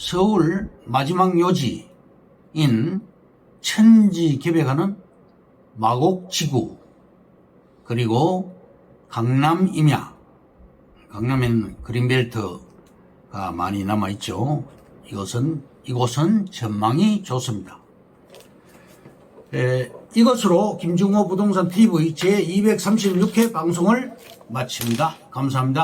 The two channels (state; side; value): identical; both; correlation 1.00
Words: 마지막 요지인 천지개벽하는 마곡지구, 그리고 강남 임야, 강남에는 그린벨트가 많이 남아있죠. 이곳은 전망이 좋습니다. 이것으로 김중호 부동산 TV 제236회 방송을 마칩니다.